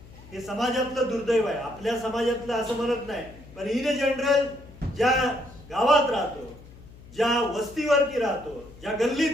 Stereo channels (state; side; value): noise; left; hum, 20 dB below the sound